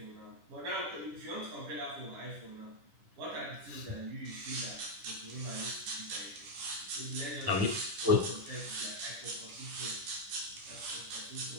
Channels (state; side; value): late; left; 10 ms